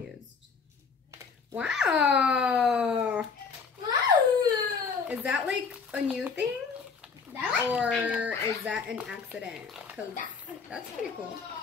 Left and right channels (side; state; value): right; quieter; 5.4 dB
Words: Wow. Is that like a new thing? Or is that an accident? Because that's pretty cool.